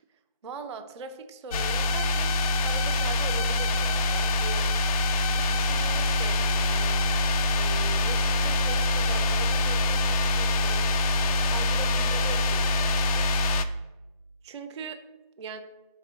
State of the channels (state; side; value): inverted; both; correlation -0.65